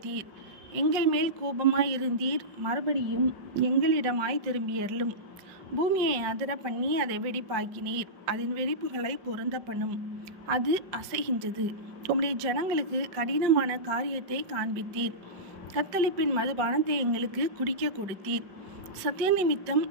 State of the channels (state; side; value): late; left; 5.7 ms